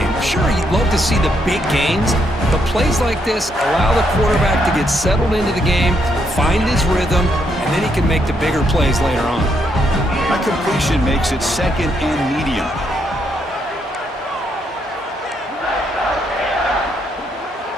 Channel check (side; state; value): both; normal; correlation 0.76